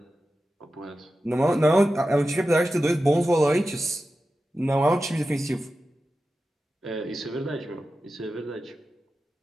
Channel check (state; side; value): normal; both; correlation 0.93